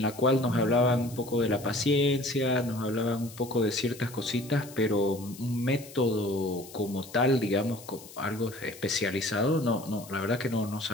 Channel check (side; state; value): left; noise; hiss, 18 dB below the sound